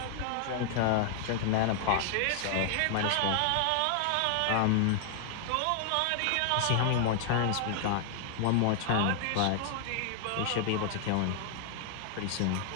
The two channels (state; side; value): different; both; correlation 0.00